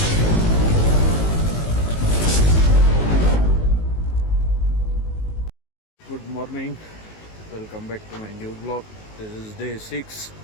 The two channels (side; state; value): right; late; 19 ms